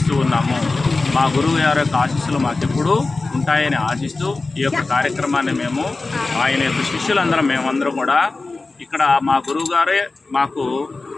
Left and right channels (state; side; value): quieter; right; 3.5 dB